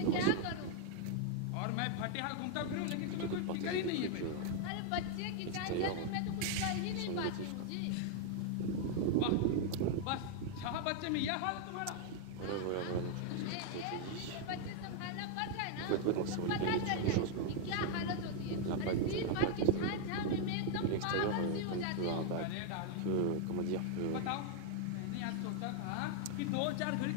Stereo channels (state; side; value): different; both; correlation 0.00